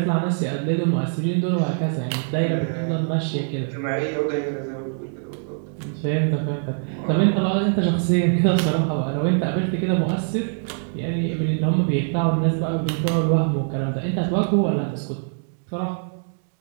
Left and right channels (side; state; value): left; silent; digital silence